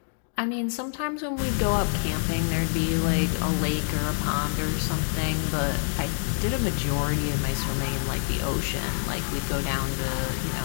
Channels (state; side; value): silent; right; digital silence